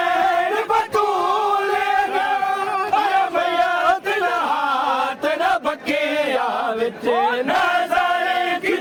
बतूलेगा अरे भैया तेरा हाथ न बकिया विच नाज़ारे की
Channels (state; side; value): identical; both; correlation 1.00